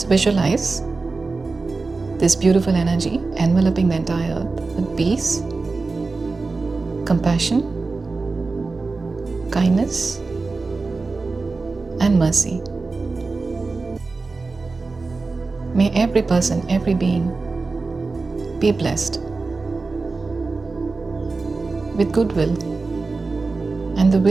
visualize this beautiful energy enveloping the entire earth with peace, compassion, kindness, and mercy. May every person, every being be blessed with goodwill and the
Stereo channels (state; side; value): quieter; left; 3.9 dB